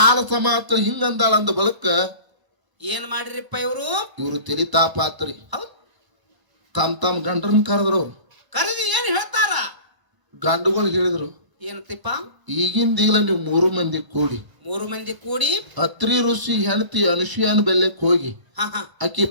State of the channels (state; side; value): late; left; 1.0 ms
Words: ಸಮಾತ ಹಿಂಗಂದಾಳ ಅಂದ ಬಳಕ ಏನ್ ಮಾಡಿರಿಪ್ಪ ಇವರು ತಿಳಿತಾಪಾತ್ರಿ. ತಮ್ಮ ಗಂಡರನ್ನ ಕರೆದ್ರು. ಕರೆದಿ ಏನ್ ಹೇಳ್ತಾರ? ಗಂಡುಗಳು ಹೇಳಿದ್ರು, ಏನಂತಿಪ್ಪ? ಈಗಿಂದೀಗಲ ನೀವು 3 ಮಂದಿ ಕೂಡಿ ಅತ್ರಿ ಋಷಿ ಹೆಂಡತಿ ಅನುಸೂಯನ ಬೆಲ್ಲಕ್ಕೆ ಹೋಗಿ ಆಕಿ